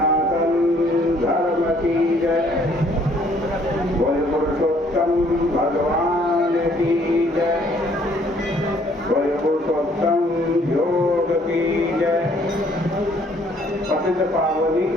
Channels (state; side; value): normal; both; correlation 0.62